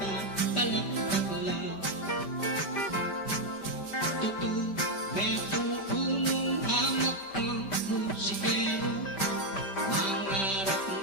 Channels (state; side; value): late; right; 5.1 ms